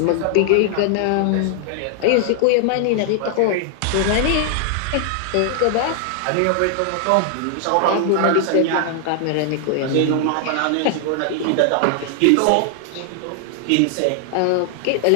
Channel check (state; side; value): different; both; correlation 0.00